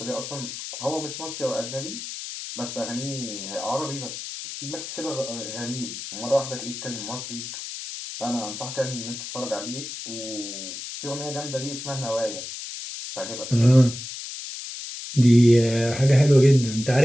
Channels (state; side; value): noise; left; hiss, 9 dB below the sound